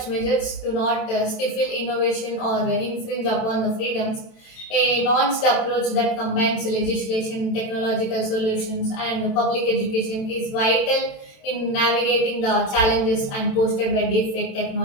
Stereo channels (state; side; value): late; right; 27 ms